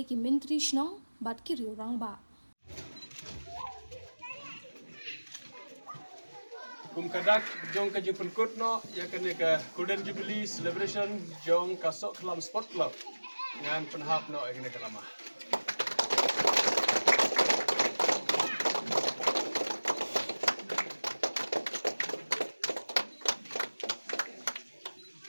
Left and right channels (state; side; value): inverted; both; correlation -1.00